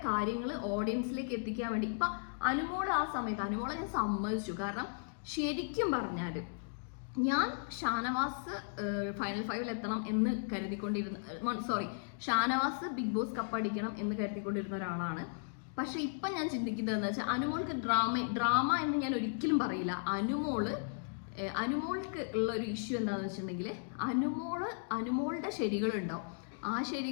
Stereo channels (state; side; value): silent; right; digital silence